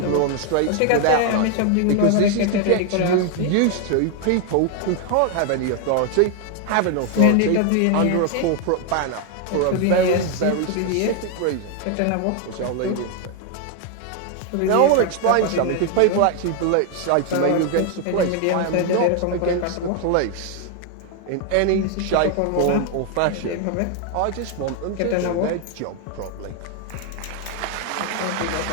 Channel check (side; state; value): both; different; correlation 0.01